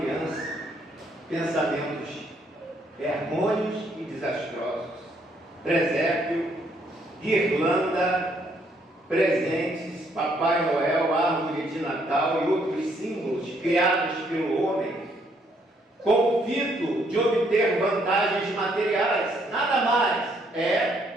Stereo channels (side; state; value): both; normal; correlation 0.70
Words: pensamentos errôneos e desastrosos. Presépio, guirlanda, presentes, Papai Noel, árvore de Natal e outros símbolos criados pelo homem, com o fito de obter vantagens materiais. Nada mais